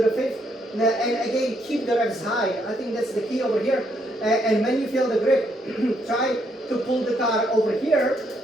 5th, and again keep the revs high. I think that's the key over here. And when you feel the grip, try to pull the car over here,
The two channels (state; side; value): normal; both; correlation 0.74